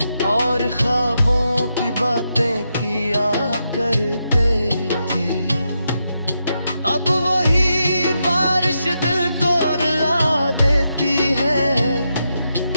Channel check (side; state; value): both; inverted; correlation -0.85